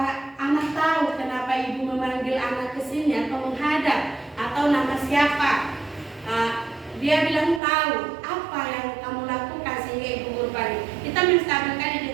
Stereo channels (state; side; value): drops out; left; at 7.6 s